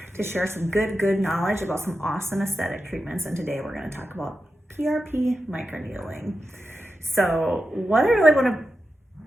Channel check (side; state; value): both; normal; correlation 0.90